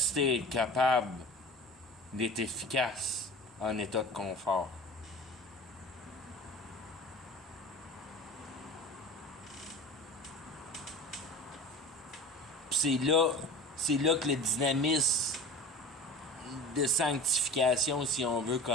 à être capable d'être efficace en état de confort. Puis c'est là que le dynamisme de sanctification, si on veut,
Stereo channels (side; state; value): both; normal; correlation 0.37